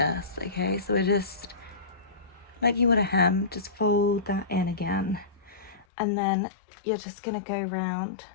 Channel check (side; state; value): right; drops out; at 5.9 s